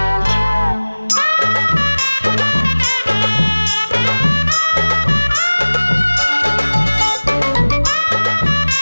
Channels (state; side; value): inverted; both; correlation -1.00